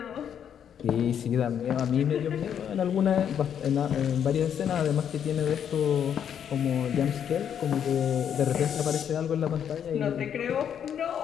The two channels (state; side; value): quieter; right; 8.7 dB